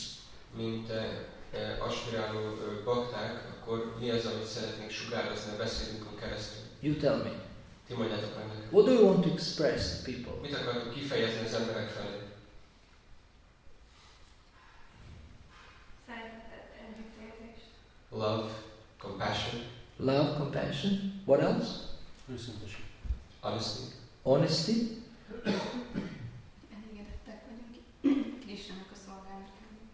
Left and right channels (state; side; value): identical; both; correlation 1.00